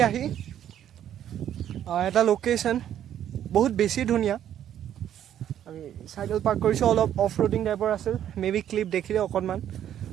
আহি এটা লোকেশ্যন বহুত বেছি ধুনীয়া আমি চাইকেল পাৰ্ক কৰিছোঁ অলপ অফ ৰোডিং টাইপৰ আছিল মেবি ক্লিপ দেখিলে অকণমান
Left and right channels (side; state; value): left; quieter; 10.6 dB